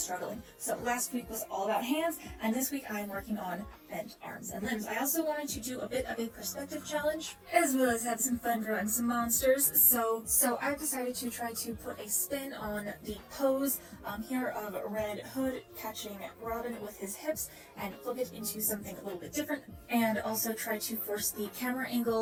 So last week was all about hands, and this week I am working on bent arms and limbs. I also wanted to do a bit of a perspective challenge, as well as have some fun drawing some monsters. So I decided to try to put a spin on the pose here of Red Hood catching Robin with his hips and flip it into something a little bit different, and also try to force the camera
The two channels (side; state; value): both; identical; correlation 1.00